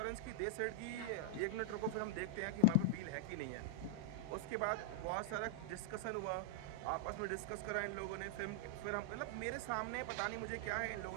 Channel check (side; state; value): both; different; correlation -0.01